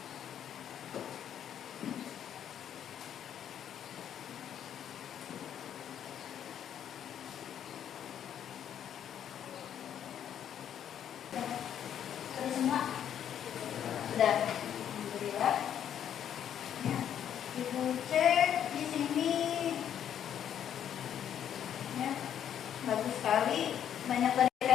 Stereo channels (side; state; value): right; quieter; 9.6 dB